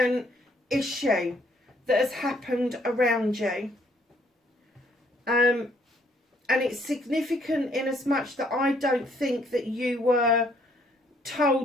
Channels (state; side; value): normal; both; correlation 0.66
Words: issue that has happened around you. And it's significant in as much that I don't think that you were